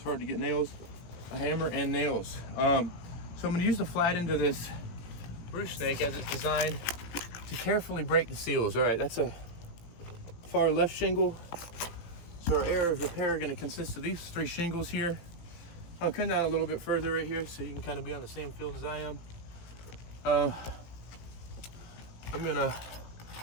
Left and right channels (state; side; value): late; right; 18 ms